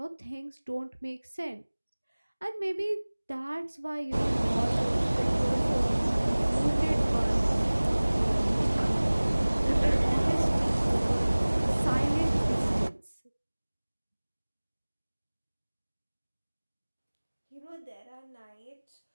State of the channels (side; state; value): both; inverted; correlation -1.00